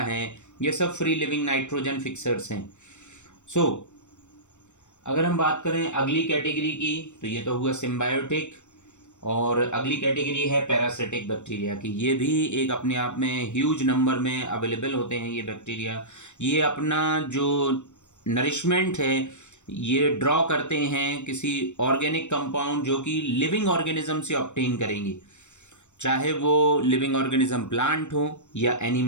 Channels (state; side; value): late; right; 0.84 ms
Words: ये सब फ्री लिविंग नाइट्रोजन फिक्सर्स हैं। सो अगर हम बात करें अगली कैटेगरी की तो ये तो हुआ सिम्बायोटिक, और अगली कैटेगरी है पैरासिटिक बैक्टीरिया की। ये भी एक अपने आप में ह्यूज नंबर में अवेलेबल होते हैं ये बैक्टीरिया। ये अपना जो नरिशमेंट है ये ड्रॉ करते हैं किसी ऑर्गेनिक कंपाउंड जो कि लिविंग ऑर्गेनिज्म से ऑब्टेन करेंगे, चाहे वो लिविंग ऑर्गेनिज्म प्लांट हो या